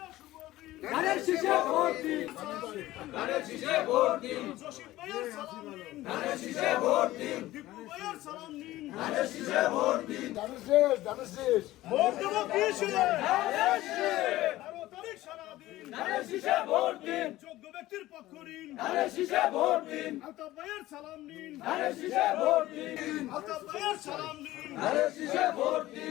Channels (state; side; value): quieter; right; 16.4 dB